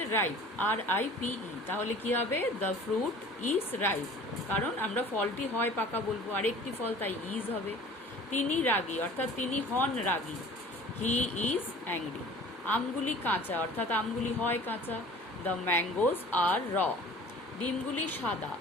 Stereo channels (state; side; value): normal; both; correlation 0.45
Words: রাইপ, RIPE। তাহলে কি হবে? দ্য ফ্রুট ইজ রাইপ, কারণ আমরা ফলটি হয় পাকা বলবো, আরেকটি ফল তাই ইজ হবে। তিনি রাগী অর্থাৎ তিনি হন রাগী, হি ইজ অ্যাংরি। আমগুলি কাঁচা অর্থাৎ আমগুলি হয় কাঁচা, দ্য ম্যাঙ্গোজ আর র। ডিমগুলি সাদা,